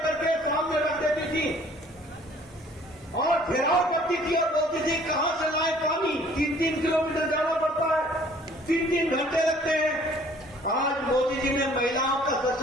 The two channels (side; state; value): both; normal; correlation 0.55